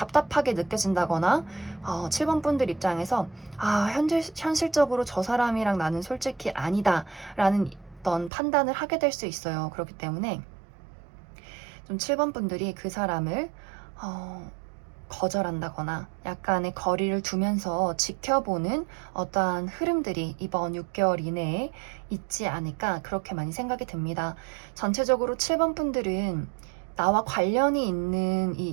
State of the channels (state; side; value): drops out; left; at 8.3 s